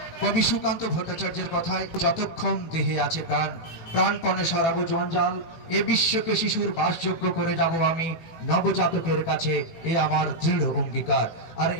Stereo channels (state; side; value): late; right; 18 ms